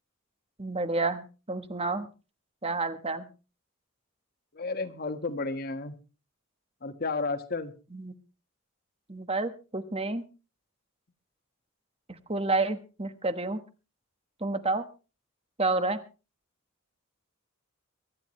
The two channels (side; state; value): both; normal; correlation 0.06